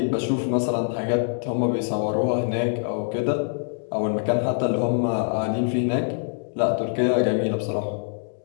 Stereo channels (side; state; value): right; silent; digital silence